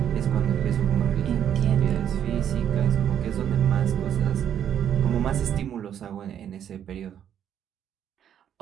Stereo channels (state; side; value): quieter; left; 9.6 dB